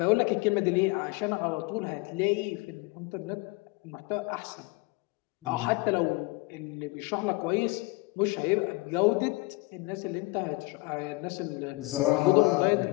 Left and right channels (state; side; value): quieter; right; 23.9 dB